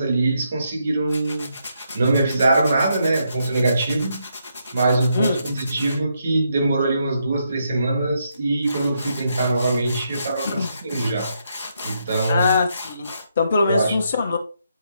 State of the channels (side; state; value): both; inverted; correlation -0.78